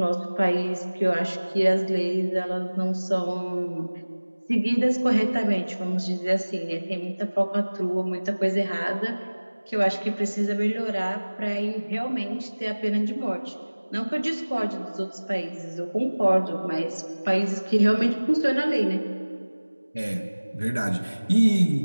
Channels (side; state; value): both; inverted; correlation -1.00